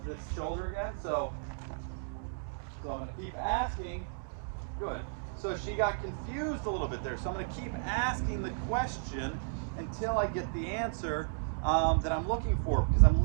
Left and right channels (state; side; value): silent; left; digital silence